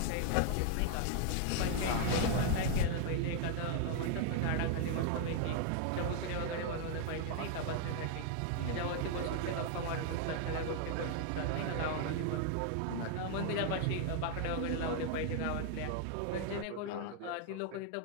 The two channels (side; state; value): both; different; correlation 0.00